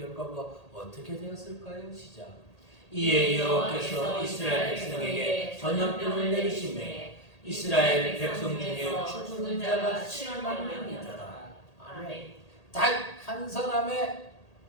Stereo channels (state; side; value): late; right; 1.8 ms